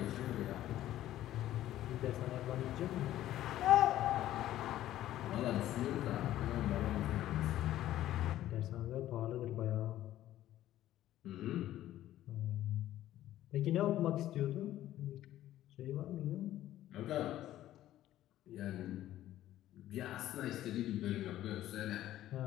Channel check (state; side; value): quieter; right; 13.5 dB